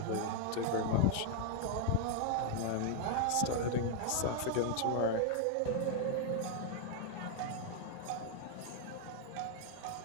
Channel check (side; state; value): both; different; correlation 0.00